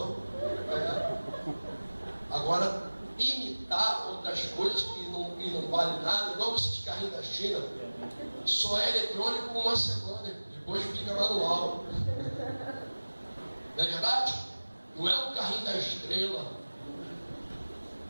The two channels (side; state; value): both; inverted; correlation -1.00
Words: Agora, imitar outras coisas que não valem nada, igual esse carrinho da China, só é eletrônico por uma semana, depois fica manual. Não é verdade? Não é um carrinho da Estrela